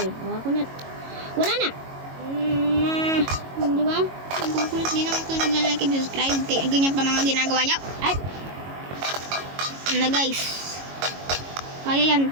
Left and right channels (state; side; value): late; left; 22 ms